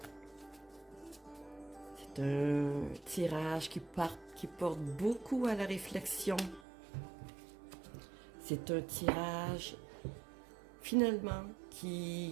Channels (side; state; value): left; drops out; at 6.6 s